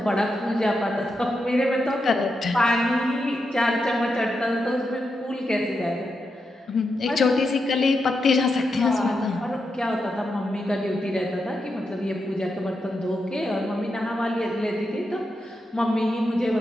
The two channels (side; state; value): both; normal; correlation 0.86